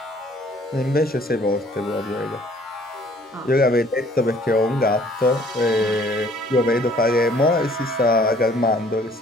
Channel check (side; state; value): both; normal; correlation 0.58